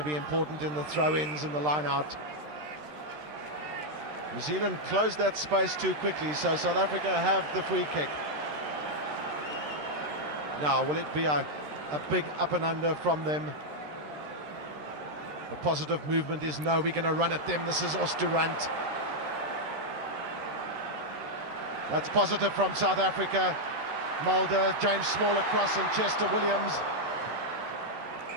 be important in the throw-ins and the line-out. New Zealand closed that space too quickly, so South Africa have the free kick. Now, will it be a big up and under from them? The positive movement is no, we're going to run at them. This is Oosterhuis. That's positive from South Africa. Mulder, James Small across, and Chester Williams.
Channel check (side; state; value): left; late; 13 ms